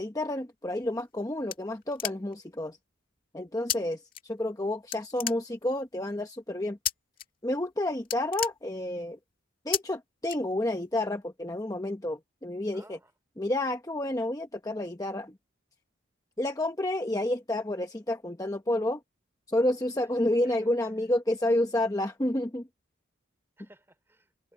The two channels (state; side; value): normal; both; correlation 0.73